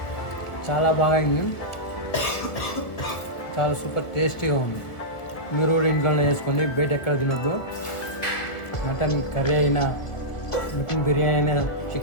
చాలా బాగా అయింది. చాలా సూపర్ టేస్టీగా ఉంది. మీరు కూడా ఇంట్లోనే చేసుకోండి, బయట ఎక్కడ తినొద్దు. మటన్ కర్రీ అయినా, మటన్ బిర్యానీ అయినా,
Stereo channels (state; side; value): late; right; 1.7 ms